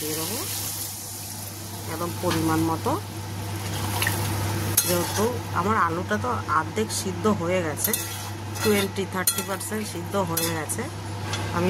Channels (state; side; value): identical; both; correlation 1.00